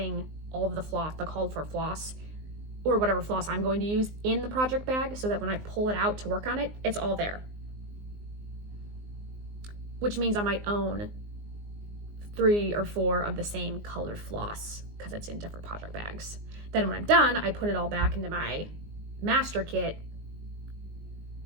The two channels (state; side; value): late; left; 19 ms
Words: all of the floss, the called for floss, or whatever floss I'm going to use, in the project bag, so that when I pull it out to work on it, it's all there. Which means I might own 3 or 4 of the same colored floss, because it's in different project bags. Then when I'm done, I put it all back into my master kit.